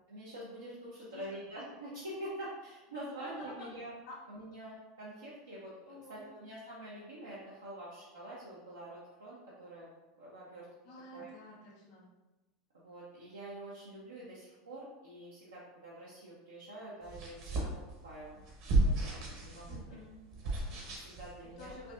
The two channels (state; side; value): normal; both; correlation 0.35